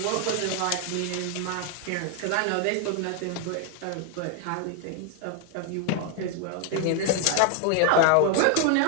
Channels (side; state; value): both; different; correlation 0.00